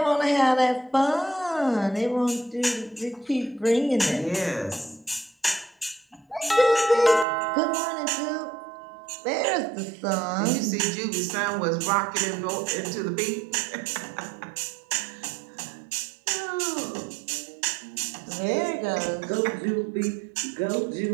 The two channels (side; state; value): left; drops out; at 7.2 s